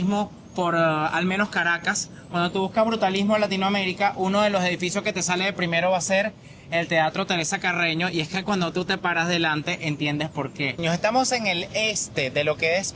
por al menos Caracas. Cuando tú buscas brutalismo en Latinoamérica, uno de los edificios que te sale de primero va a ser el Teatro Teresa Carreño, y es que cuando tú te paras delante entiendes por qué. Nos estamos en el este de lo que es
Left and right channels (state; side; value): identical; both; correlation 1.00